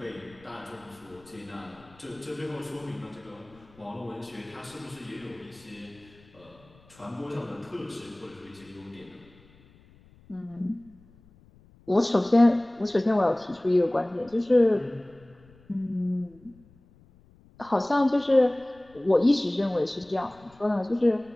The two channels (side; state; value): left; noise; rumble, 27 dB below the sound